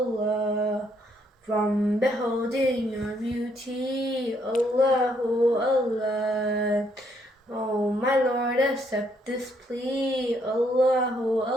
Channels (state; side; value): normal; both; correlation 0.71